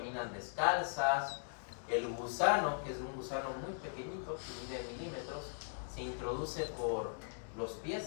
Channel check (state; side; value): silent; right; digital silence